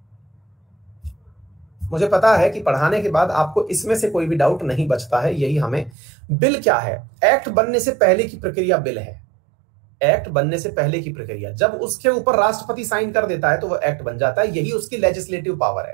मुझे पता है कि पढ़ाने के बाद आपको इसमें से कोई भी डाउट नहीं बचता है। यही हमें, बिल क्या है? एक्ट बनने से पहले की प्रक्रिया बिल है। एक्ट बनने से पहले की प्रक्रिया, जब उसके ऊपर राष्ट्रपति साइन कर देता है तो वो एक्ट बन जाता है। यही उसकी लेजिस्लेटिव पावर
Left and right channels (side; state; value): left; drops out; at 5.9 s